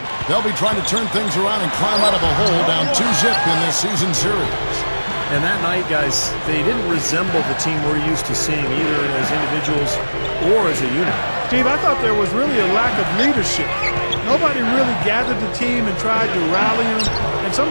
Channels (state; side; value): inverted; both; correlation -1.00